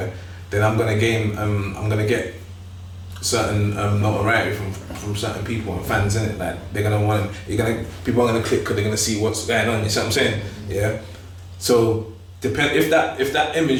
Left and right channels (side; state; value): both; identical; correlation 1.00